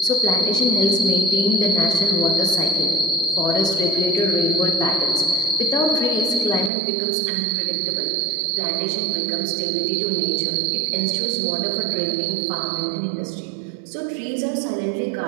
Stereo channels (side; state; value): left; drops out; at 6.7 s